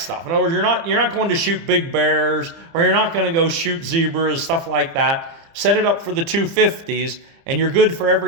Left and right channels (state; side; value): late; left; 30 ms